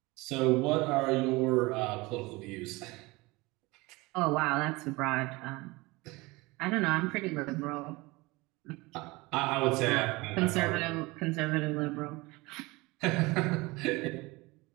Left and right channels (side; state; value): left; quieter; 23.1 dB